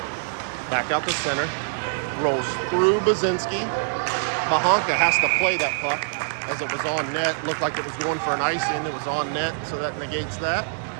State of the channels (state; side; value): silent; left; digital silence